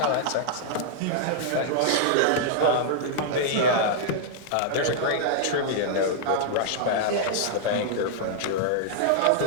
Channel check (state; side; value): different; both; correlation -0.01